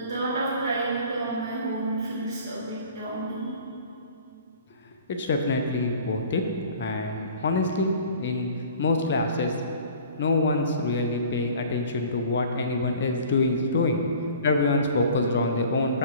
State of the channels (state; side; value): inverted; both; correlation -0.47